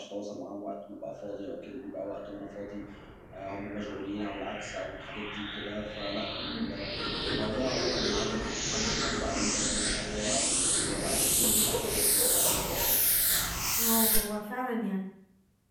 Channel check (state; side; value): identical; both; correlation 1.00